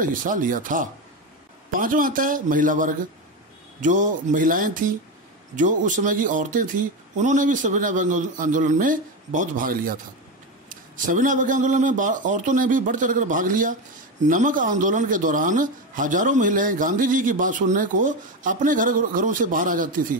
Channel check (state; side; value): normal; both; correlation 0.16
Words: हिस्सा लिया था। 5वां आता है महिला वर्ग। जो महिलाएं थी, जो उस समय की औरतें थी, उन्होंने भी सविनय अवज्ञा आंदोलन में बहुत भाग लिया था। सविनय अवज्ञा आंदोलन में औरतों ने भी बढ़ चढ़कर भाग लिया। नमक आंदोलन के दौरान हजारों महिलाएं गांधी जी की बात सुनने को अपने घरों से बाहर आ जाती थी।